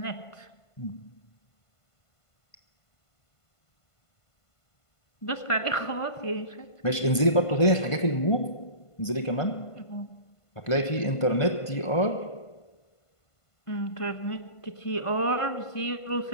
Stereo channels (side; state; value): right; late; 1.5 ms